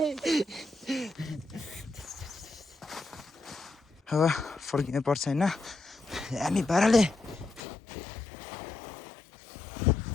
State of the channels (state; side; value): drops out; right; at 7.6 s